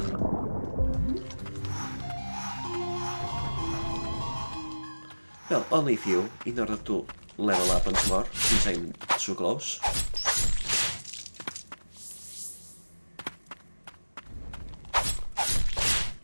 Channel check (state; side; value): inverted; both; correlation -1.00